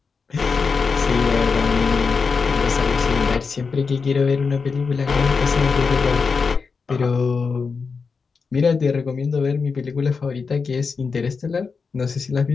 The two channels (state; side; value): quieter; right; 5.1 dB